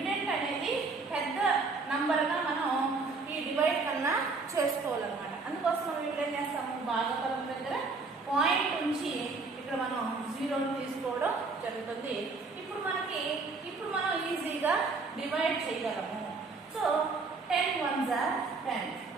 అనేది పెద్ద నంబర్గా మనం ఈ డివైడ్ కన్నా చేసుకోవాలన్నమాట. అందుకోసం మనం ఇక్కడ ఏం చేస్తాము? భాగఫలం దగ్గర పాయింట్ ఉంచి ఇక్కడ మనం 0 తీసుకోవడం జరుగుతుంది. ఇప్పుడు మనం ఈజీగా డివైడ్ చేయగలము. సో 10 ones are 10.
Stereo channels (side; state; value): left; quieter; 4.1 dB